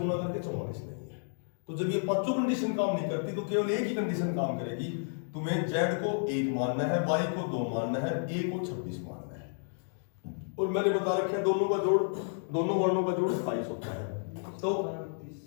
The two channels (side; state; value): right; silent; digital silence